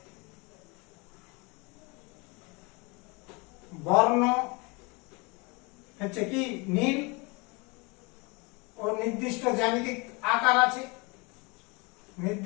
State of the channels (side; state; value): right; quieter; 28.1 dB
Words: বর্ণ হচ্ছে কি নীল ও নির্দিষ্ট জ্যামিতিক আকার আছে,